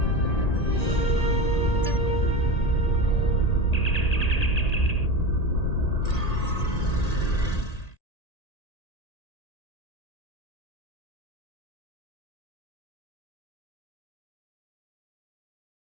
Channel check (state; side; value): late; right; 1.8 ms